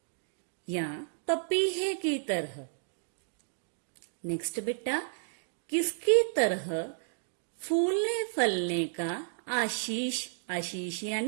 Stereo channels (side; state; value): left; silent; digital silence